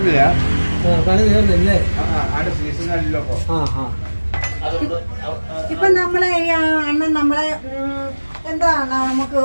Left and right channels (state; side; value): inverted; both; correlation -1.00